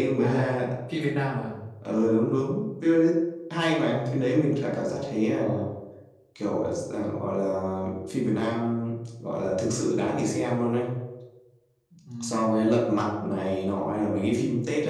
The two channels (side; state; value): both; identical; correlation 1.00